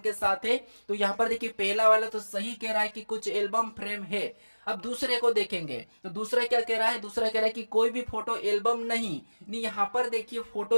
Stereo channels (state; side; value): inverted; both; correlation -1.00